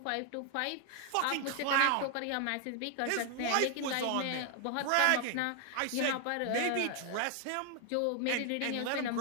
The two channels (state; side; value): different; both; correlation 0.00